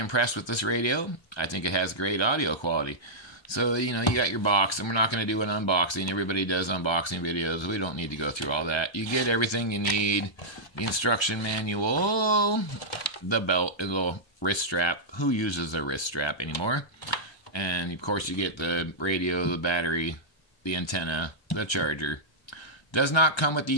with this radio. I think it has great audio quality. So, you got your box, and we're not going to do an unboxing. Everybody does unboxing videos. We don't need to go through all that. You get everything you need. The instruction manual, the belt, a little wrist strap. Who uses a wrist strap anymore? And, of course, you get the radio, the battery, the antenna, the charger. Does not come with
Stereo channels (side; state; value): right; late; 1.2 ms